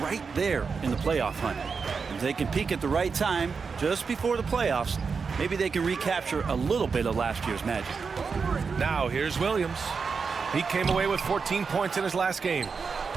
right there in the playoff hunt. If they can peak at the right time, just before the playoffs, Maybe they can recapture a little bit of last year's magic. Now here's Williams. He came away with 14 points in his last game.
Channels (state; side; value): quieter; left; 5.3 dB